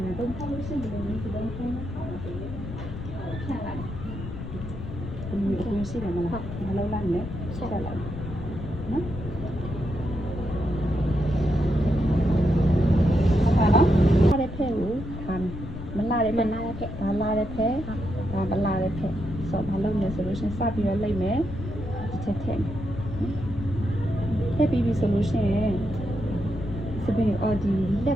တုံးဖောက်လို့ရှိရင်ဒီလိုမျိုးဒီတိုင်းဖုန်းနဲ့ခေါ်လို့ဖြန့်လိုက်ဒီမျိုးကိုရှိတယ်မလားမလုပ်လိုက်နဲ့ဆက်လိုက်နော်ဟုတ်ပါနော်လာတဲ့ဖက်ကိုခံမလာတဲ့ဖက်ဒါလာတဲ့ဖက်ဒါမလာတဲ့ဖက်ဆိုဘာလုပ်လဲဆိုလို့ရှိရင်စပြီးတော့လိုက်မယ်ဒီချက်ထည့်ထည့်ပြီးပြီဆိုလို့ရှိရင်စပင်းအော်ဒီလက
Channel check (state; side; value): noise; left; rumble, 8 dB below the sound